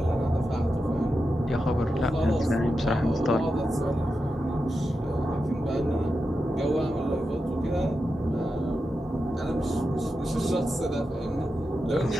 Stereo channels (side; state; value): both; normal; correlation 0.89